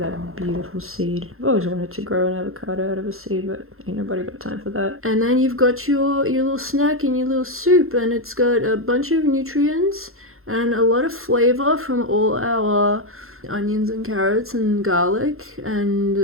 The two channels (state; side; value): late; left; 0.62 ms